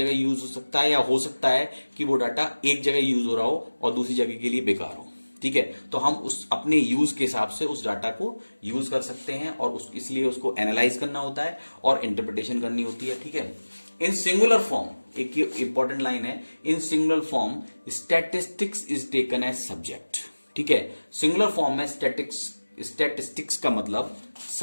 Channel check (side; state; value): both; inverted; correlation -1.00